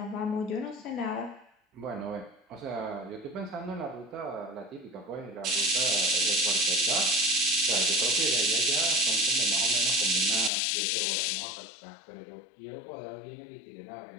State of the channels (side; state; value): right; drops out; at 10.5 s